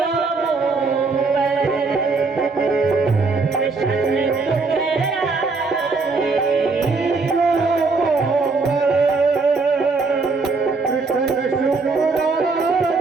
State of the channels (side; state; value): left; quieter; 4.1 dB